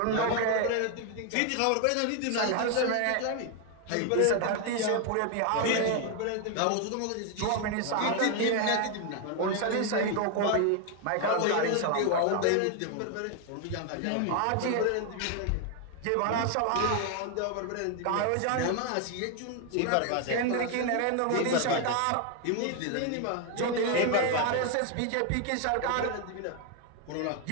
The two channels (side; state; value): both; different; correlation 0.01